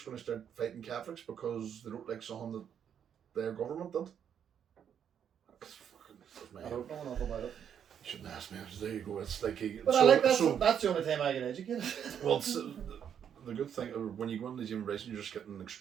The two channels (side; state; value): left; quieter; 8.5 dB